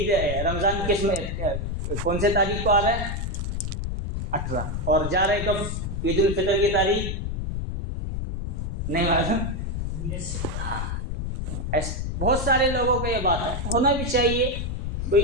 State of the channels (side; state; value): left; noise; rumble, 3 dB below the sound